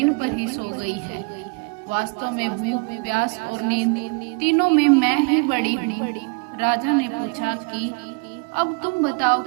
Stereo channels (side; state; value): left; quieter; 33.3 dB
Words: पर ही सो गई है। वास्तव में भूख, प्यास और नींद तीनों में मैं ही बड़ी हूँ। राजा ने पूछा कि अब तुम बताओ